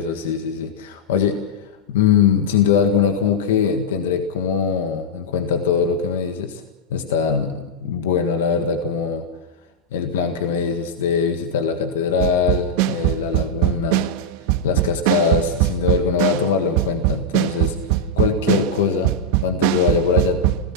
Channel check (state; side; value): normal; both; correlation -0.06